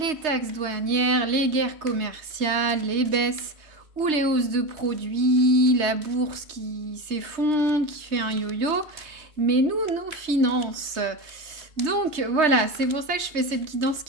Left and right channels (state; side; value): late; left; 3.2 ms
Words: taxes douanières, les guerres commerciales, les baisses ou les hausses de produits, la bourse qui s'effondre, qui fait un yo-yo. Mais nous, nos finances. Donc voilà, c'est pour ça que je fais cette guidance